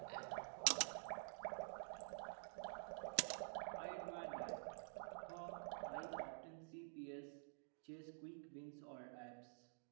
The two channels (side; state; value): left; silent; digital silence